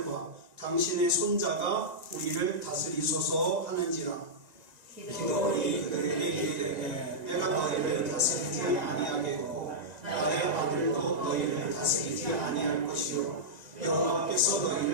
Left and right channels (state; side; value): late; left; 1.9 ms